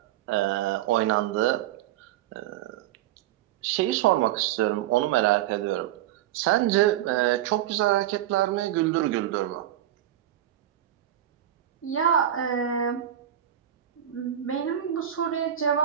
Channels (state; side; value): quieter; left; 11.9 dB